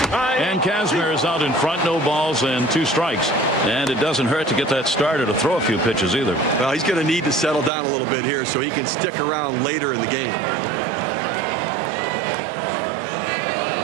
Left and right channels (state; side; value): drops out; left; at 7.7 s